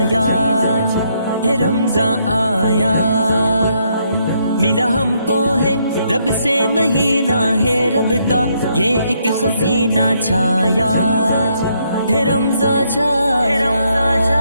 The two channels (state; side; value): inverted; both; correlation -0.74